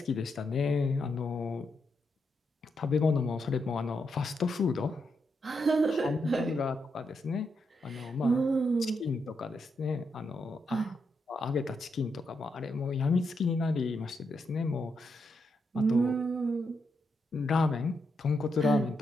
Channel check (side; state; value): both; normal; correlation 0.82